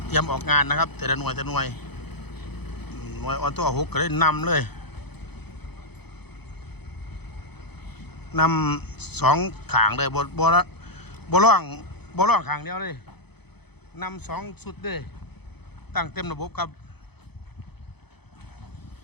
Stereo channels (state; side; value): late; right; 0.98 ms